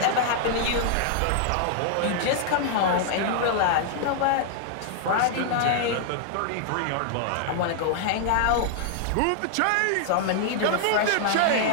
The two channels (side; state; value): both; different; correlation -0.01